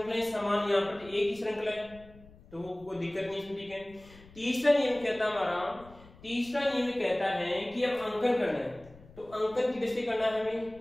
समान, यहाँ पर एक ही श्रृंखला है तो वो कोई दिक्कत नहीं इसमें। ठीक है, तीसरा नियम कहता है हमारा, तीसरा नियम कहता है कि अब अंकन करना है। तो अंकन किधर से करना है हमें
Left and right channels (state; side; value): noise; left; rumble, 23 dB below the sound